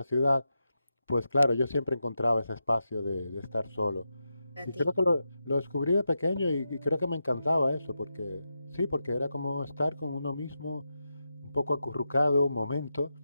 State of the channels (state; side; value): inverted; both; correlation -0.88